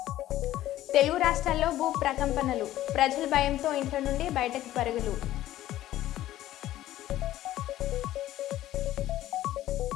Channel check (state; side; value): quieter; right; 14.1 dB